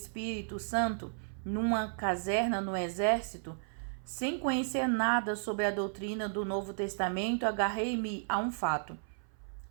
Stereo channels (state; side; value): silent; left; 55 dB below the other